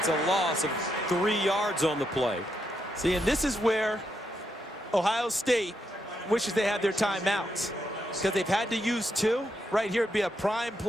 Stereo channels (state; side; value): normal; both; correlation 0.81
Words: a loss of 3 yards on the play. See, and this is where Ohio State wishes they had their timeouts, because they've had to use 2. Right here would be a prime